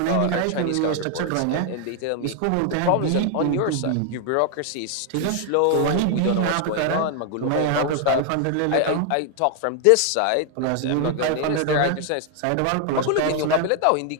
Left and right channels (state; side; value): different; both; correlation 0.00